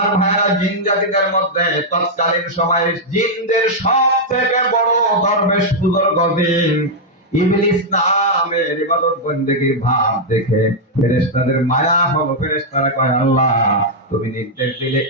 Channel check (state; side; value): normal; both; correlation -0.04